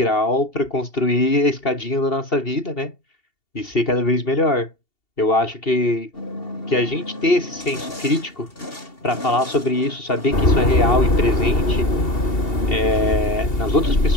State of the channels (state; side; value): late; right; 2.7 ms